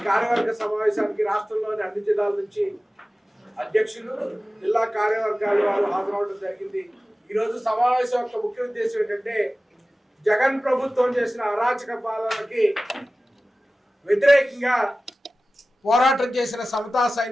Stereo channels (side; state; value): both; normal; correlation 0.96